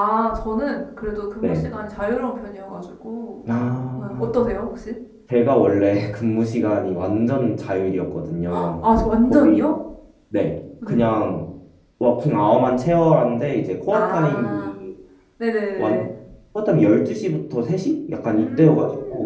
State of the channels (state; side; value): identical; both; correlation 1.00